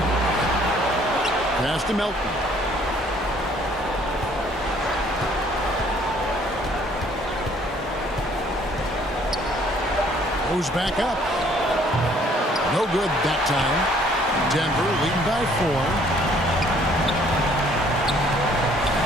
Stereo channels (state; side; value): normal; both; correlation 0.60